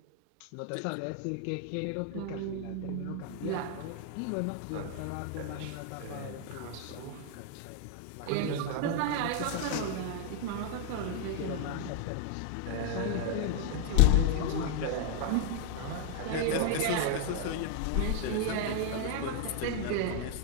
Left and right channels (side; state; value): both; different; correlation 0.00